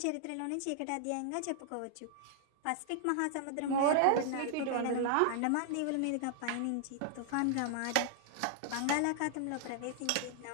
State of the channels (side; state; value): both; different; correlation -0.01